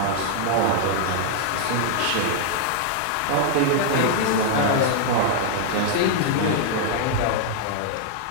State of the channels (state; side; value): different; both; correlation -0.01